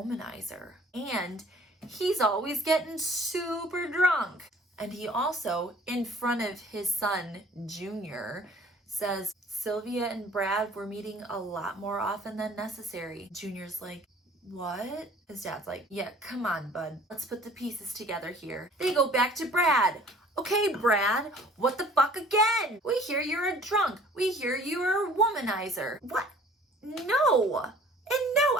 and he's always getting super drunk. And he also, in front of his son, Junior, says Sylvia and Brad were meeting a lot more often than necessary. Junior's like, "What?" His dad's like, "Yeah, come on, bud. Let's put the pieces together here." They go back to Brad. "Okay, Brad, what the fuck again? We hear you're a drunk. We hear you're a womanizer." "What? No. And no,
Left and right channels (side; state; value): both; normal; correlation 0.52